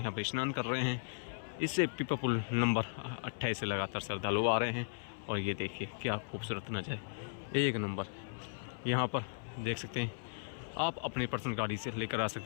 पर स्नान कर रहे हैं। इससे पीपा पुल नंबर 28 से लगातार श्रद्धालु आ रहे हैं। और ये देखिए क्या खूबसूरत नज़ारे, एक नंबर। यहाँ पर देख सकते हैं आप अपनी पर्सनल गाड़ी से लेकर आ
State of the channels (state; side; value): silent; right; 53 dB below the other